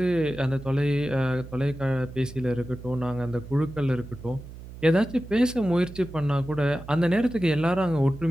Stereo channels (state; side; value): noise; right; hum, 14 dB below the sound